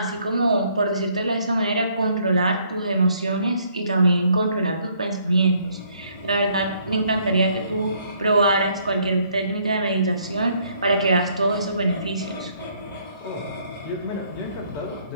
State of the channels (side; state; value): both; inverted; correlation -0.66